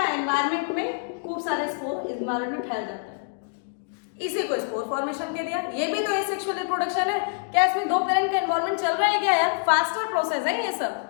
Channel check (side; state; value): right; silent; digital silence